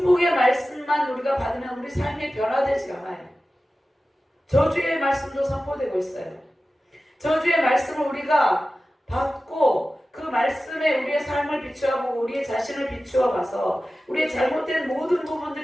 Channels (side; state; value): both; normal; correlation 0.95